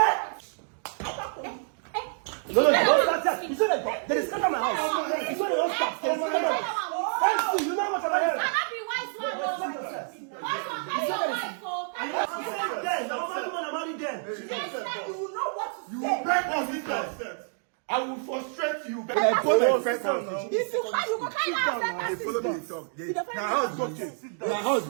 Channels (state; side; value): silent; left; digital silence